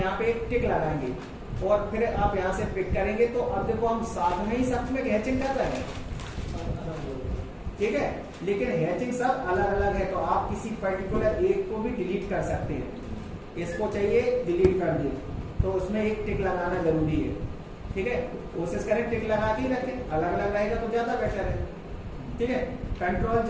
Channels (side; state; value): both; identical; correlation 1.00